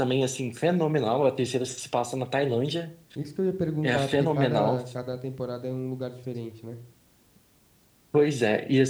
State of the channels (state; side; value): identical; both; correlation 1.00